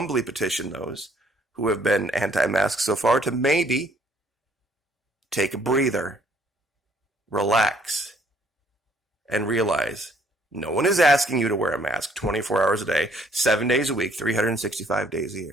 petition those who have been anti-mask so far to maybe take a breather, relax, and realize no one is asking you to wear a mask 24 hours a day, 7 days a week, 365 days a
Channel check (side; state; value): both; normal; correlation 0.63